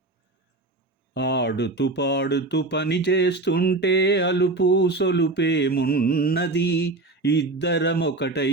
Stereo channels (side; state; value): left; quieter; 3.1 dB